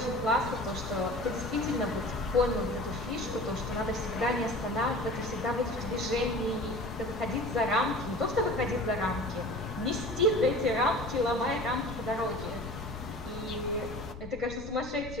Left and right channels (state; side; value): noise; left; rumble, 12 dB below the sound